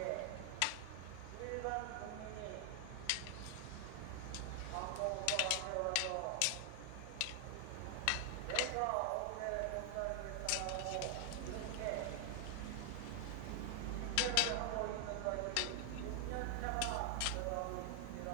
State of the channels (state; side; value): different; both; correlation 0.00